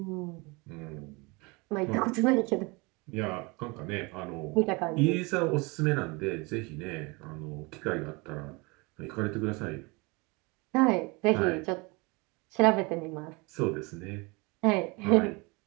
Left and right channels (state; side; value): quieter; left; 27.1 dB